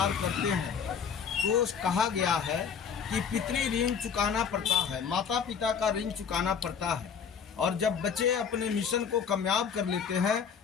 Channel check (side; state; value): right; quieter; 6.9 dB